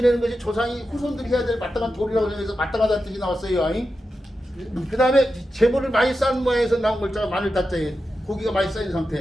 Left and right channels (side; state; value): both; normal; correlation 0.90